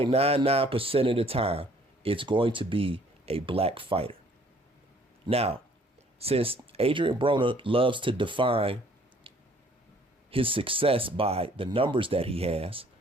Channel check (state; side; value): normal; both; correlation 0.59